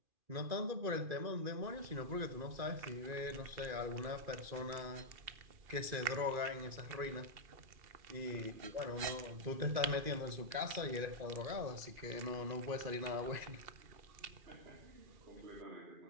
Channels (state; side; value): late; left; 2.4 ms